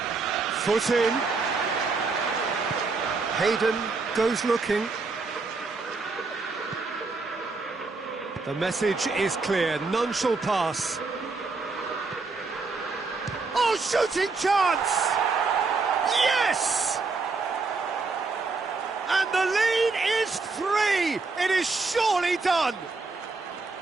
Foot in. Hayden goes looking. The message is clear, none shall pass. Oh, shooting chance! Yes! And the lead is 3! It is surely done!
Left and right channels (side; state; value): left; quieter; 4.1 dB